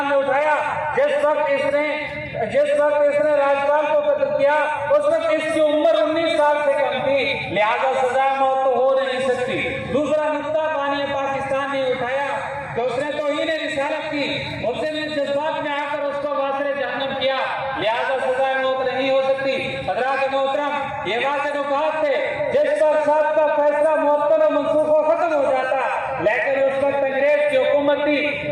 ने उठाया, जिस वक्त इसने राज्यपाल को कत्ल किया उस वक्त इसकी उम्र 19 साल से कम थी, लिहाजा सजा मौत तो हो नहीं सकती। दूसरा नुक्ता बानी पाकिस्तान ने उठाया कि उसने तौहीन रिसालत की, उसने जज्बात में आकर उसको वासिल जहन्नम किया, लिहाजा सजा मौत नहीं हो सकती। हजरात मोहतरम, ये वाज़े नुकात थे जिस पर साहब का फैसला मुअत्तल और मनसूख खत्म हो जाता, लेकिन उस वक्त अंग्रेज की हुकूमत थी,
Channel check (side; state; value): both; identical; correlation 1.00